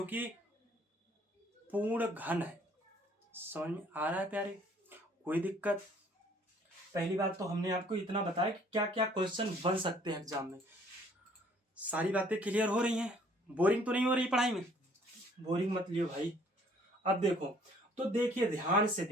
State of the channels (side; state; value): both; normal; correlation 0.59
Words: कि पूर्ण घन है। समझ में आ रहा है प्यारे, कोई दिक्कत। पहली बात तो हमने आपको इतना बताया कि क्या क्या क्वेश्चन बन सकते हैं एग्जाम में। सारी बातें क्लियर हो रही हैं, बोरिंग तो नहीं हो रही पढ़ाई में, बोरिंग मत लियो भाई। अब देखो तो देखिए, ध्यान से